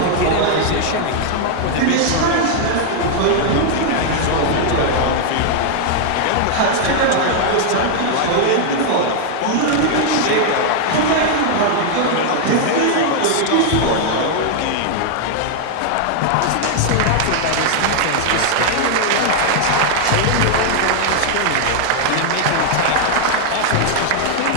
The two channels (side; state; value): both; different; correlation 0.00